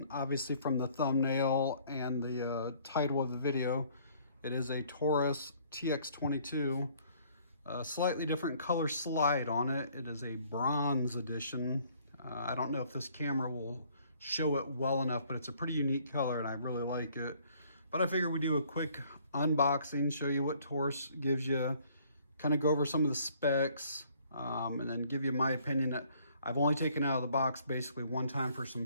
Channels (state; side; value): inverted; both; correlation -0.61